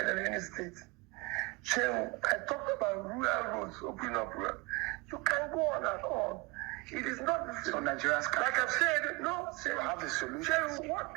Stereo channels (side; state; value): left; quieter; 25.1 dB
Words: than any state. So I talked about rural roads, opening up rural. You can go on and on. It is not the same. So Nigerians can, like I've said, no, say, have the solution. say what